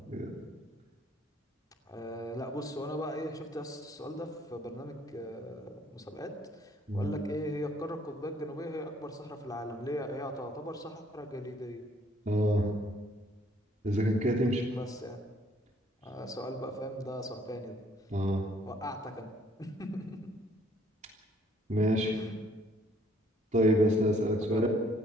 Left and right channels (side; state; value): both; normal; correlation 0.63